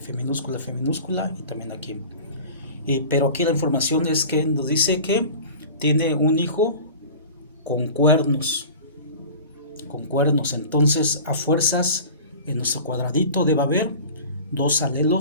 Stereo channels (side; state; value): both; inverted; correlation -0.39